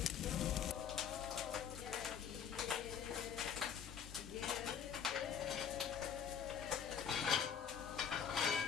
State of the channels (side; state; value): right; quieter; 7.9 dB